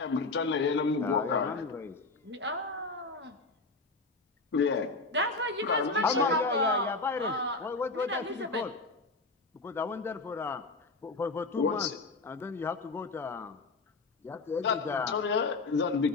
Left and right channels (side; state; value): right; quieter; 3.6 dB